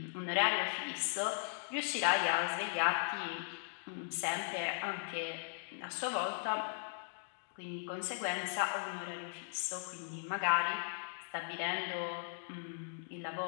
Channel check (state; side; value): silent; right; digital silence